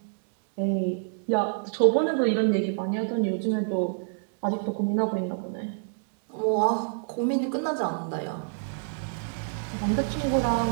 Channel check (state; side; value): silent; left; digital silence